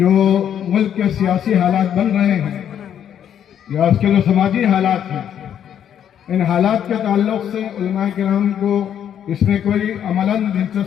ملک کے سیاسی حالات بن رہے ہیں یا اس کے جو سماجی حالات ہیں، ان حالات کے تعلق سے علماء کرام کو اس میں کوئی عملاً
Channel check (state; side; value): quieter; right; 9.4 dB